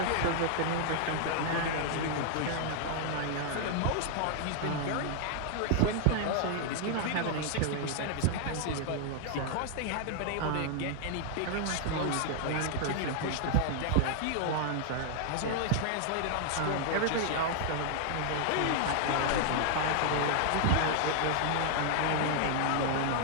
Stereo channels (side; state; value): both; different; correlation 0.00